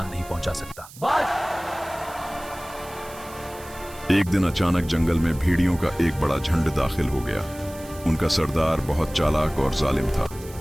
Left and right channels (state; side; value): noise; right; hiss, 19 dB below the sound